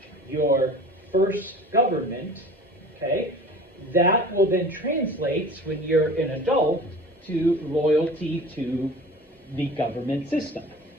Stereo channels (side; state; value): both; normal; correlation 0.41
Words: your first government, okay, that will then translate when you're an adult to loyalty to the government system.